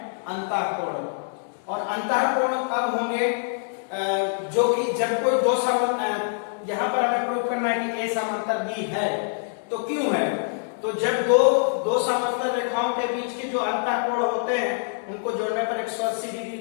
अंतः कोण। और अंतः कोण कब होंगे? जो कि जब कोई दो समांतर, यहाँ पर हमें प्रूव करना है कि A समांतर B है। तो क्यों है? तो जब दो समांतर रेखाओं के बीच के जो अंतः कोण होते हैं उनको जोड़ने पर 180 डिग्री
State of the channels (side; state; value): right; silent; 62 dB below the other